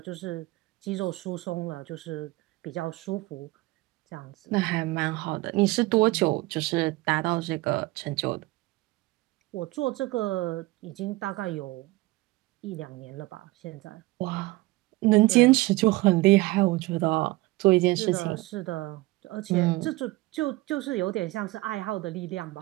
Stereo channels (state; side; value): quieter; left; 20.5 dB